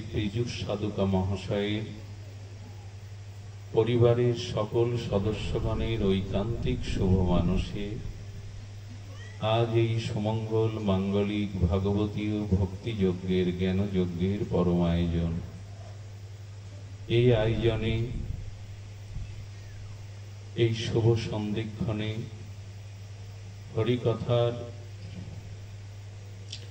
পীযুষ সাধুকা মহাশয়ের পরিবারের সকল সদস্যগণের ঐকান্তিক শুভ মানসে আজ এই সুমঙ্গল মাঙ্গলিক ভাগবতীয় ভক্তিযজ্ঞের জ্ঞানযজ্ঞের পরম আয়োজন। এই আয়োজনে এই শুভ সন্ধিক্ষণে হরিকথার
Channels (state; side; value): identical; both; correlation 1.00